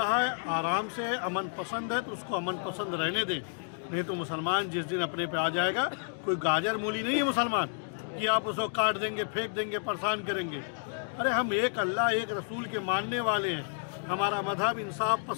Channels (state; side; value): silent; right; digital silence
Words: है, आराम से है, अमन पसंद है तो उसको अमन पसंद रहने दें, नहीं तो मुसलमान जिस दिन अपने पे आ जाएगा, कोई गाजर मूली नहीं है मुसलमान कि आप उसको काट देंगे, फेंक देंगे, परेशान करेंगे। अरे हम एक अल्लाह एक रसूल के मानने वाले हैं, हमारा मजहब इंसाफ